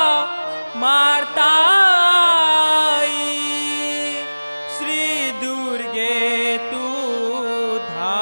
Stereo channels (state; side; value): inverted; both; correlation -1.00